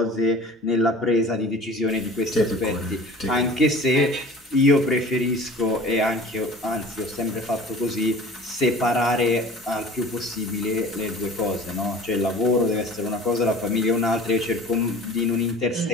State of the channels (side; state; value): both; normal; correlation 0.43